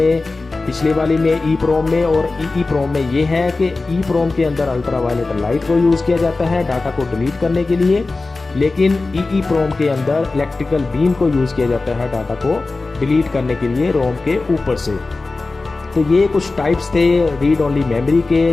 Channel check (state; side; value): quieter; right; 3.5 dB